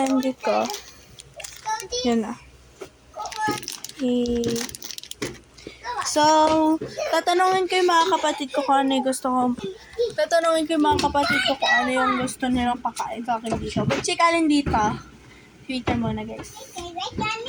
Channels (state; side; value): identical; both; correlation 1.00